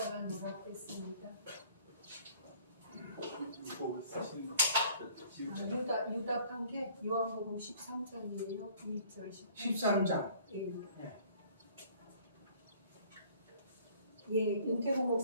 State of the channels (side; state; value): both; inverted; correlation -0.55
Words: 노랗겠습니다. 유답한 게 요한복음 13장이에요. 2절 13장. 윤태국